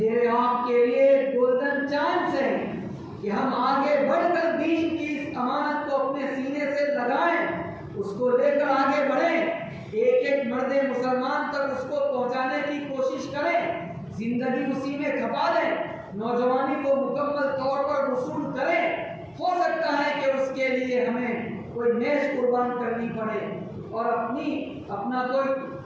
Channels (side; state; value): both; identical; correlation 1.00